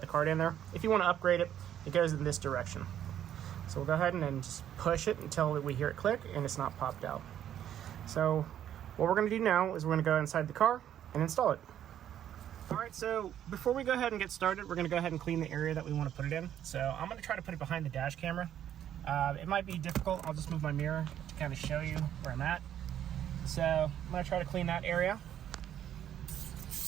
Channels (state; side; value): quieter; left; 10.5 dB